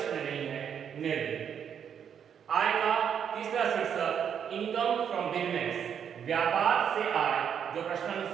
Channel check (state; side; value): quieter; left; 8.1 dB